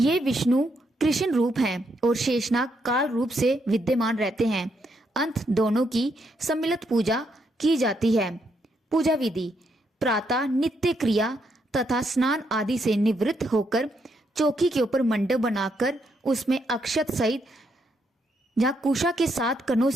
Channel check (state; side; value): normal; both; correlation 0.77